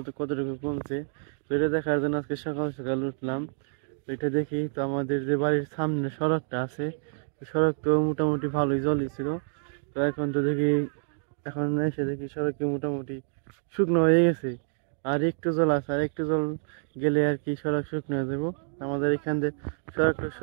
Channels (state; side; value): silent; left; digital silence